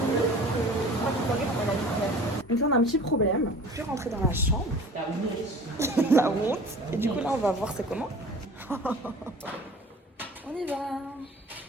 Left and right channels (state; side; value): normal; both; correlation 0.44